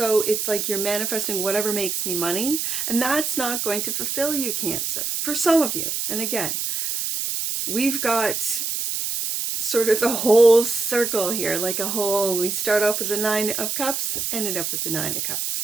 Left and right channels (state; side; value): noise; right; hiss, 2 dB below the sound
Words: it's like you're manifesting whatever makes me money. And that's not going to fulfill you, Cancer, for some of you. And again, we've got sort of a whole circle here, like a whole, we start off with the Nine of Cups, ended up with the Nine of Cups.